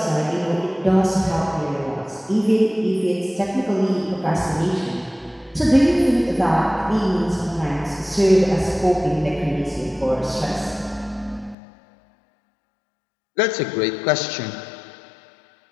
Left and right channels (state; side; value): drops out; right; at 11.6 s